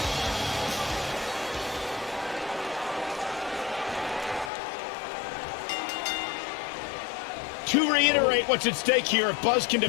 To reiterate what's at stake here, if Buzz can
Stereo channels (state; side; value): drops out; right; at 4.5 s